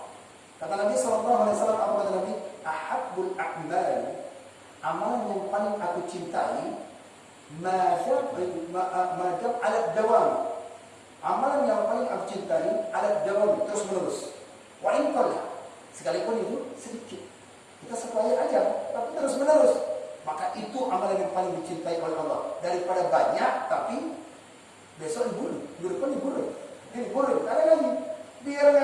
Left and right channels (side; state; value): both; identical; correlation 1.00